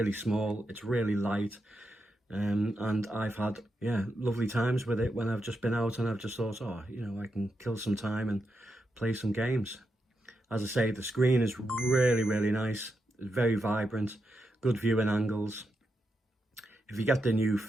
small, it's really light, and I've had, yeah, lovely times with it when I've just been out and I've just thought, oh, you know, I can kill some time and play some games. As I say, the screen is really nice. It's very vibrant, good viewing angles. If you get the new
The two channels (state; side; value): normal; both; correlation 0.85